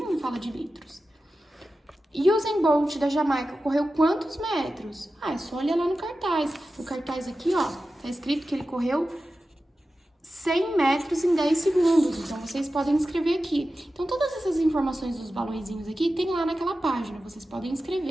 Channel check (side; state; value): both; normal; correlation 0.93